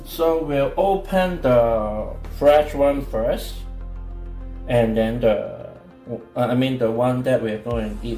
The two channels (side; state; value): both; identical; correlation 1.00